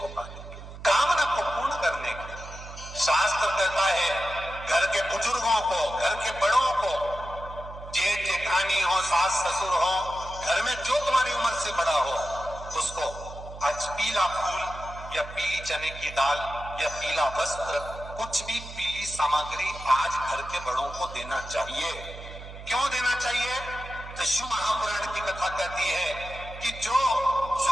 पाने के लिए, कामना को पूर्ण करने के लिए। शास्त्र कहता है घर के बुजुर्गों को, घर के बड़ों को, जेठ जेठानी हो, सास ससुर हो, घर में जो तुम्हारी उम्र से बड़ा हो, उसको आज पीला फूल या पीली चने की दाल या पीला वस्त्र, कुछ भी पीली सामग्री आज घर के बड़ों को देना चाहिए। क्यों देना चाहिए? तो शिव महापुराण की कथा कहती है कि जो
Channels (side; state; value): right; noise; hum, 13 dB below the sound